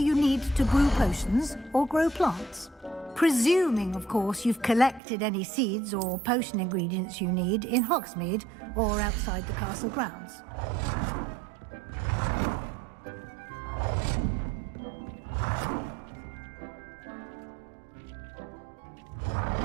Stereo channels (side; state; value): left; drops out; at 5.0 s